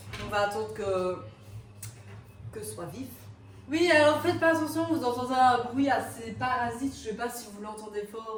On va attendre que ce soit vif. Oui, alors faites pas attention, vous entendez un bruit assez parasite, je sais pas si vous l'entendez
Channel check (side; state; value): both; identical; correlation 1.00